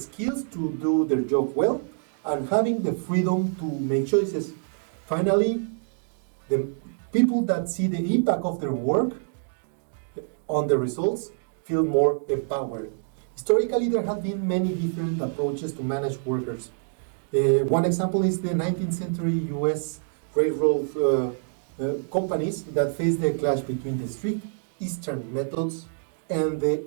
to do their job well, and having the freedom to make choices. Finally, the people that see the impact of their work on the results feel more empowered. Historically, there have been many different approaches to manage workers. One example is the 19th century US railroad companies that faced the clash between the strict Eastern methods and the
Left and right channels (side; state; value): left; silent; digital silence